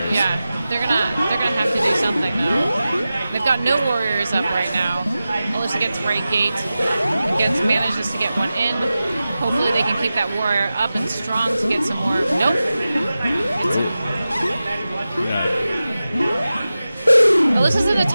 they're gonna have to do something though. They've got no warriors up right now. Alyssa gets right gate, manages to get one in. Hopefully they can keep that warrior up and strong to get some more. Nope. Alyssa's in a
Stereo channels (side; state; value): both; inverted; correlation -0.94